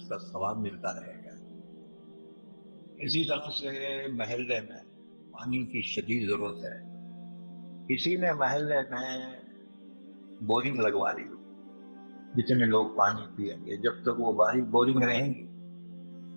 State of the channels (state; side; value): inverted; both; correlation -1.00